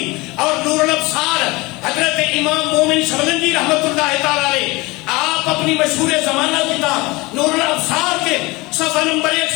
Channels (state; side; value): quieter; right; 23.2 dB